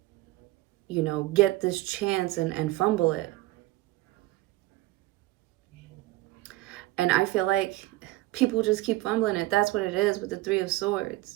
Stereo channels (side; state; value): left; quieter; 18.2 dB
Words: you know, get this chance and fumble it. And I feel like people just keep fumbling it. That's what it is with the Three of